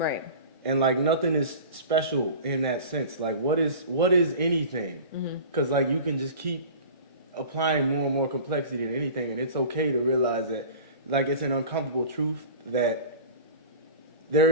And like nothing is special in that sense. Like what is anything? Because like you can just keep applying more and more complexity to anything, and it's okay to realize that like it's an uncomfortable truth that there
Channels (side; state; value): both; inverted; correlation -0.37